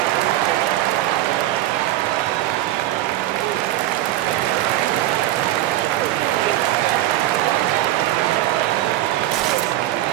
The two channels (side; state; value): left; quieter; 14.6 dB